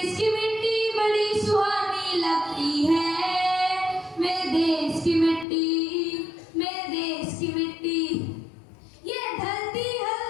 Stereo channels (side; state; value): right; drops out; at 5.5 s